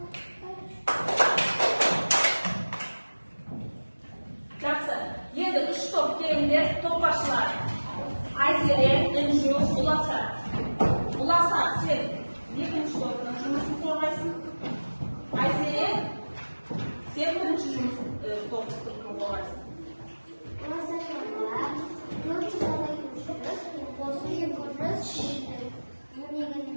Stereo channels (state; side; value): inverted; both; correlation -1.00